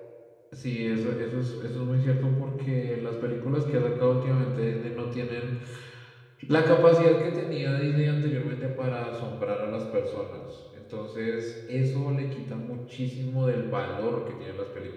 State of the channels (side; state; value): both; identical; correlation 1.00